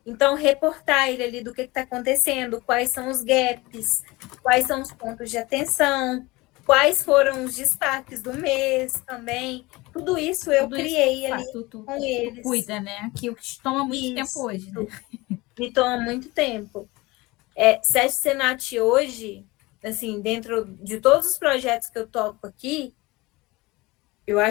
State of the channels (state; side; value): quieter; right; 22.1 dB